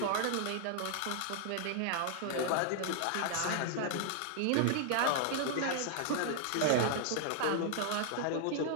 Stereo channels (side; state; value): both; different; correlation 0.00